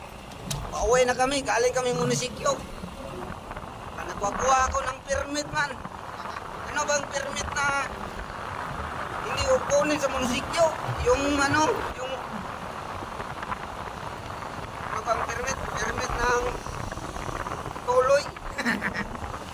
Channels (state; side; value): identical; both; correlation 1.00